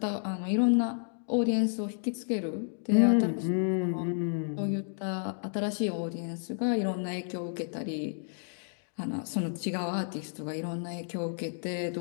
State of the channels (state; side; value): silent; right; digital silence